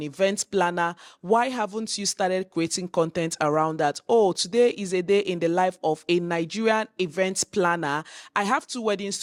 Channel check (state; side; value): identical; both; correlation 1.00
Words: event planner, why haven't you started creating content around that? Oh, today is a day in the life of a Nigerian event planner. I have 2 weddings